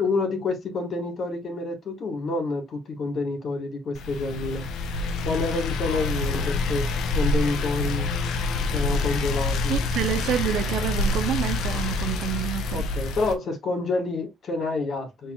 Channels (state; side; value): normal; both; correlation 0.60